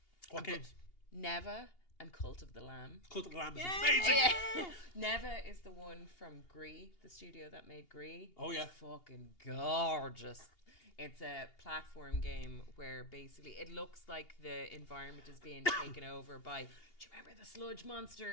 What games? Neva and Cult of the Lamb. Cult of the Lamb is amazing. Yeah. Neva is the one from Gree, the studio that made Gree. Oh yeah. It's fucking gorgeous. It's a platform game where basically it looks like the environment is being taken over by, do you remember the sludge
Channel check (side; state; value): right; late; 2.8 ms